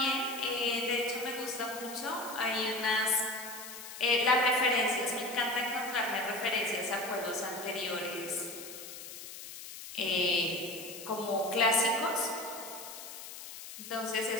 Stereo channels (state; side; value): noise; left; hiss, 12 dB below the sound